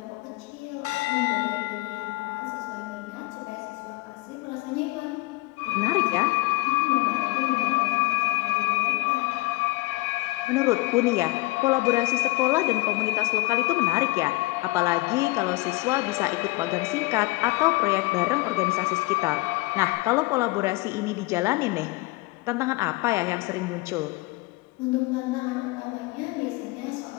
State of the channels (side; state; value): right; quieter; 23.3 dB